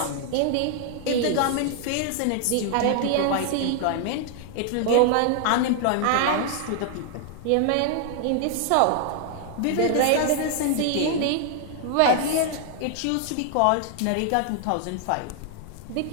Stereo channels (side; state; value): both; different; correlation 0.00